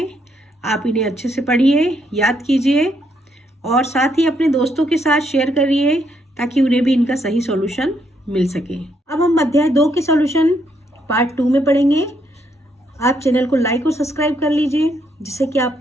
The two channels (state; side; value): normal; both; correlation 0.75